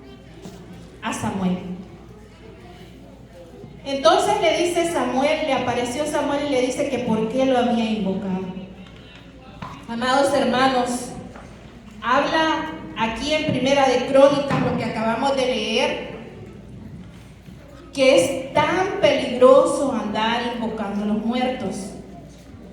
a Samuel. Entonces le apareció Samuel y le dice que por qué lo había invocado. Amados hermanos, habla aquí en Primera de Crónicas, lo que acabamos de leer, que es tan peligroso andar invocando a los muertos.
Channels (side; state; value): both; identical; correlation 1.00